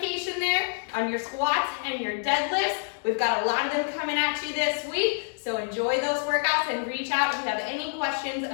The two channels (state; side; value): silent; right; digital silence